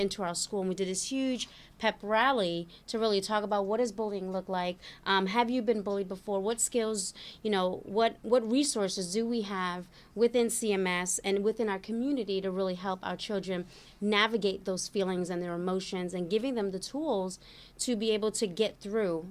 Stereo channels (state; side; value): identical; both; correlation 1.00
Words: our school, and we did this huge pep rally to really talk about what does bullying look like. Have you been bullied before? What skills, what resources do we have within CMS and within our community to really help our children navigate those feelings and their emotions, and giving them the tools to be able to get through